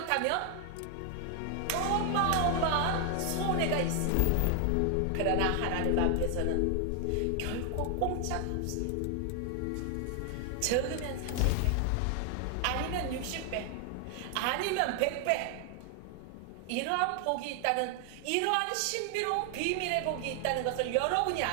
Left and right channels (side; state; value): both; different; correlation 0.00